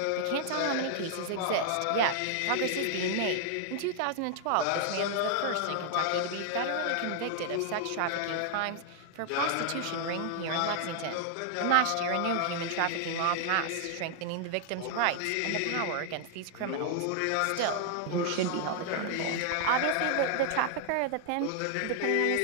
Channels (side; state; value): both; different; correlation 0.00